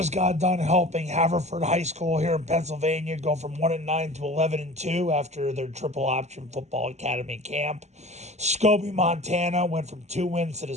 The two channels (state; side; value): late; left; 0.33 ms